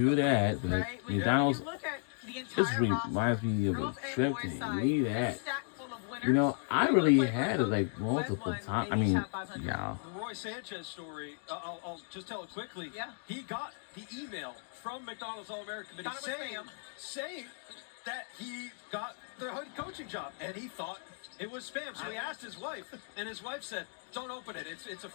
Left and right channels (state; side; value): silent; right; 54 dB below the other